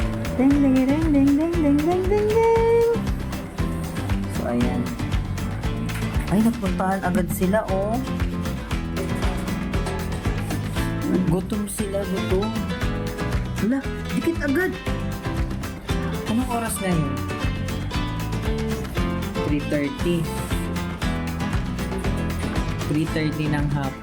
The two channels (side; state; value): both; identical; correlation 1.00